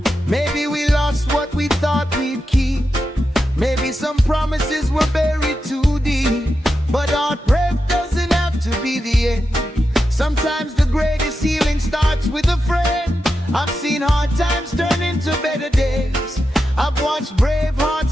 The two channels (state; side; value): normal; both; correlation 0.89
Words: Maybe we lost what we thought we'd keep. Maybe some promises were buried too deep. But heartbreak doesn't have to be the end. Sometimes the greatest healing starts with a friend. I've seen hard times turn into better days. I've watched brave